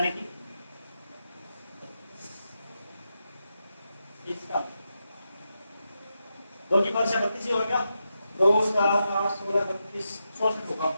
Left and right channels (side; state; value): both; inverted; correlation -0.87